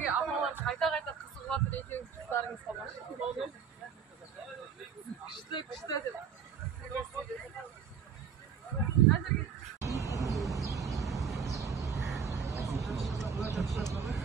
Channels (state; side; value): quieter; left; 6.9 dB